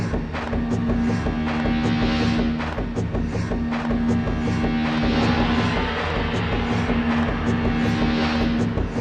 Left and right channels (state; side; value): identical; both; correlation 1.00